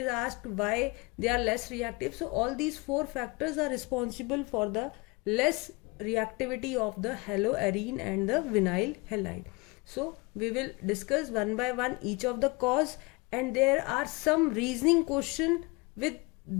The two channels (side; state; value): right; quieter; 26.5 dB